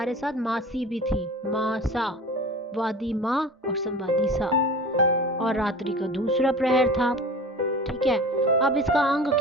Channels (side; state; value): both; normal; correlation 0.37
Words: साथ मासी भी थी, मासा, वादी माँ और संवादी सा, और रात्रि का दूसरा प्रहर था। ठीक है, अब इसका अंग